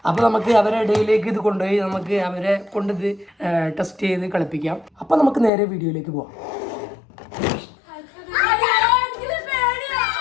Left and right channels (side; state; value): right; drops out; at 5.5 s